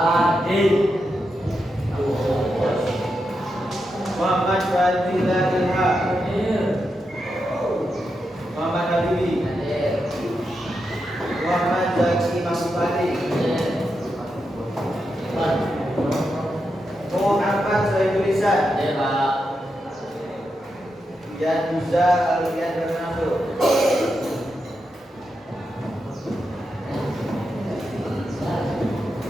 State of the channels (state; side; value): normal; both; correlation 0.86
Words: Muhammad Fadila Ilham. Muhammad Habibi. Muhammad Zaki Mahmudi. Muhammad Sohibul Lisan. Dan Musa Alian Bernardo.